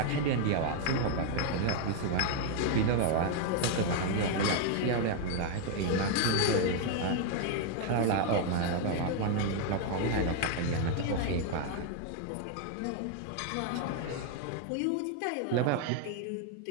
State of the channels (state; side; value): different; both; correlation 0.01